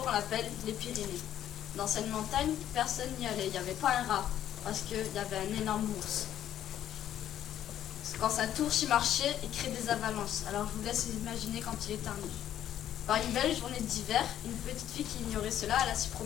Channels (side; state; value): right; quieter; 11.2 dB